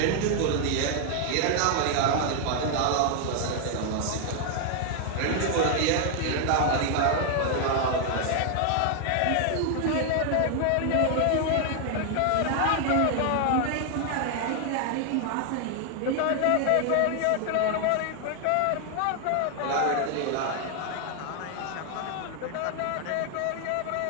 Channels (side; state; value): both; different; correlation 0.00